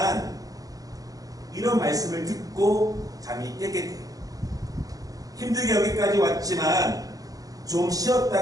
이런 말씀을 듣고 잠이 깨게 돼요. 힘들게 여기까지 왔지만 좀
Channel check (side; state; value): left; late; 0.17 ms